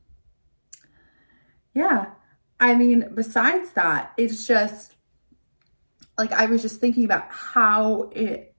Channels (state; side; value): inverted; both; correlation -1.00